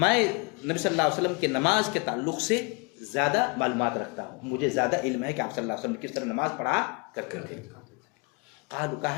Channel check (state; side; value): quieter; right; 29.9 dB